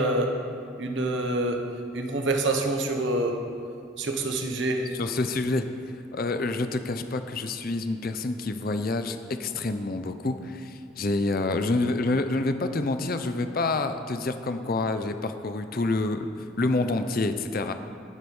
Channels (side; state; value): both; normal; correlation 0.51